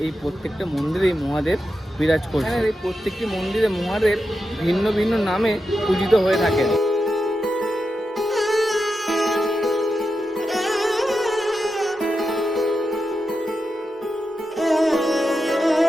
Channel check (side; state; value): both; normal; correlation 0.89